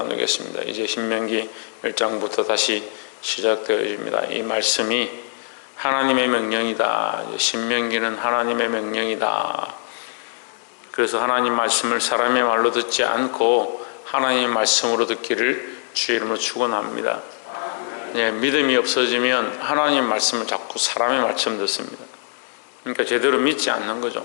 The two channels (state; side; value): silent; right; digital silence